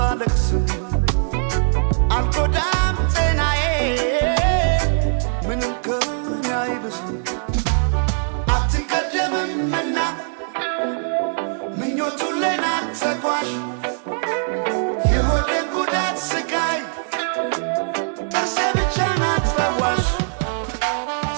አልጎዳም ጤናዬ ምንም ከኔ አይብስም አትቀደምምና ምኞቱን ለናት ተጓዥ የሆዴን ጉዳት ስቃይ ጥርሴ ብቻ ናት ፈዋሽ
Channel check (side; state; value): left; silent; digital silence